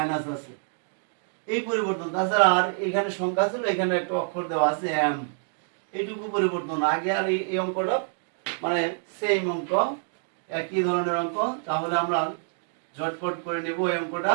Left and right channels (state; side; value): silent; left; digital silence